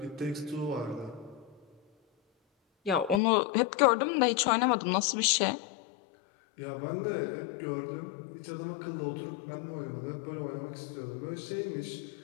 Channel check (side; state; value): right; drops out; at 3.2 s